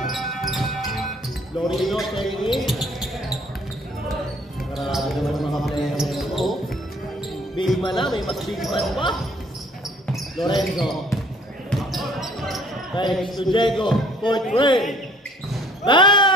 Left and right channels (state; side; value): normal; both; correlation 0.58